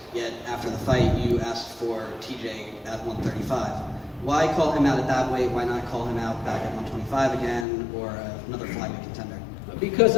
Yet after the fight, you asked for TJ at 135. Why call him out at that weight? Why not call him out back at 125 again, or another flyweight contender? Because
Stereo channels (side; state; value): right; drops out; at 7.7 s